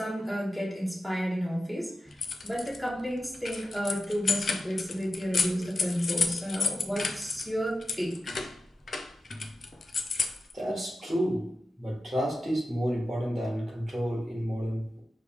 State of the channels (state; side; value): normal; both; correlation 0.92